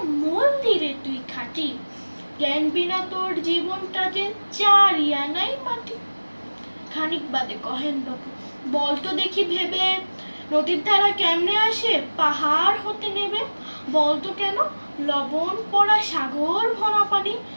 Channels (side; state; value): both; inverted; correlation -1.00